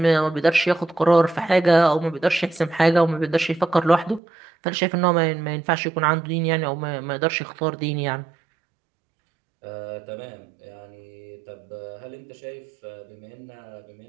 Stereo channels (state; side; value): drops out; left; at 4.2 s